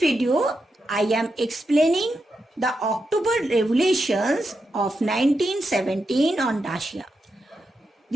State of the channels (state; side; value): normal; both; correlation 0.86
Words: I am explaining the October Revolutions of 1917 on Russia.